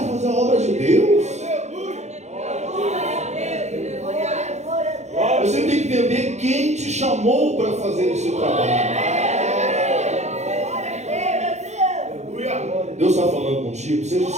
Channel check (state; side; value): late; left; 0.33 ms